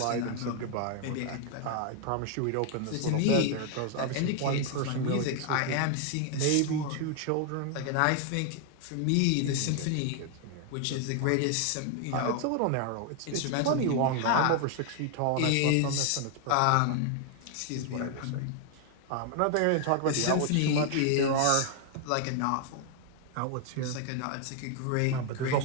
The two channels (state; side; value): different; both; correlation 0.00